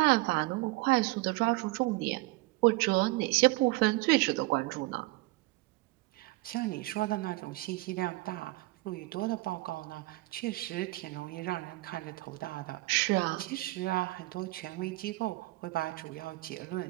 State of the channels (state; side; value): quieter; left; 21.2 dB